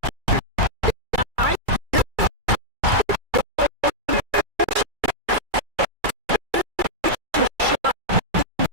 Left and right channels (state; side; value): late; left; 2.3 ms